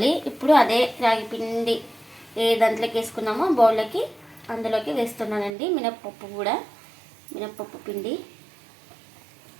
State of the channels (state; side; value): drops out; left; at 5.5 s